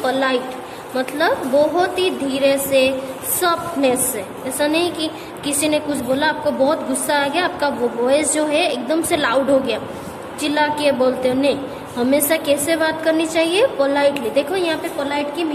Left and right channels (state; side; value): identical; both; correlation 1.00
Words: पोलाइट, मतलब बहुत ही धीरे से, सॉफ्टनेस से। ऐसा नहीं कि किसी ने कुछ बोला, आपको बहुत गुस्सा आ गया, आपका वो वॉइस जो है एकदम से लाउड हो गया, चिल्ला के बोलते हो, नहीं। हमेशा कैसे बात करनी चाहिए? पोलाइटली। देखो यहाँ पे पोलाइट की